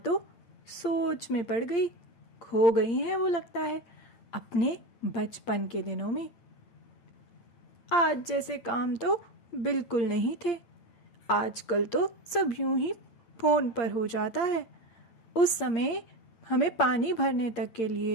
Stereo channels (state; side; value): late; right; 8.7 ms